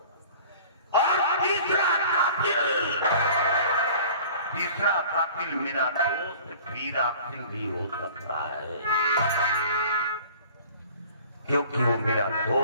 और तीसरा कातिल मेरा दोस्त बीरा सिंह भी हो सकता है, क्योंकि वो मेरा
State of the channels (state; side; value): inverted; both; correlation -0.46